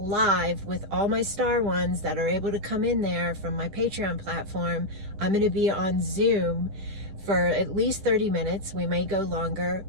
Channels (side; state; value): left; late; 10 ms